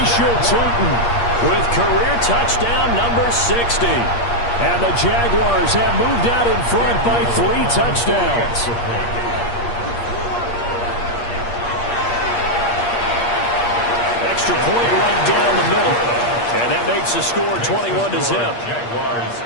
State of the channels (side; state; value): right; late; 8.5 ms